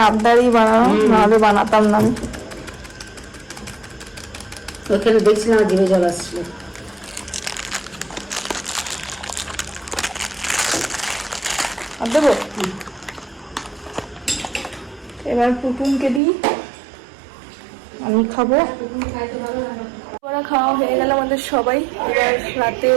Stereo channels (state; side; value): drops out; left; at 16.2 s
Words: আবদারই বানানো, নাহলে বানাতাম না আমি। ওখানে দেখছিলাম জিভে জল আসছিল। আর দেবো? এবার পুটুনকে দিই, আমি খাবো। ওরা খাওয়া হয়ে গেল আমাদের সবাই। এবার রাতে